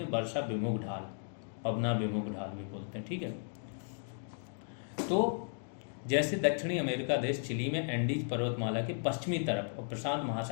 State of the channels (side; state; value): right; silent; digital silence